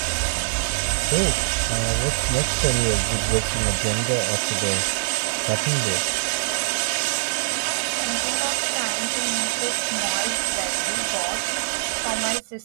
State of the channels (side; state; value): left; silent; digital silence